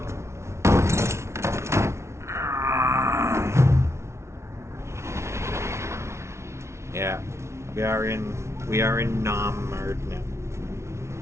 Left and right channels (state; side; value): late; left; 0.13 ms